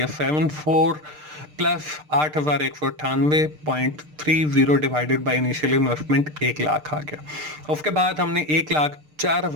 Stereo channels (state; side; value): late; left; 6.6 ms